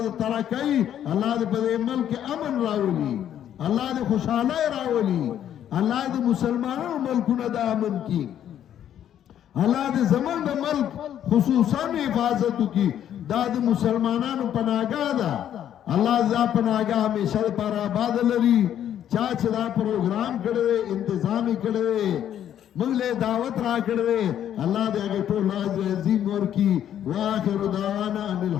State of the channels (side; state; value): right; quieter; 10.4 dB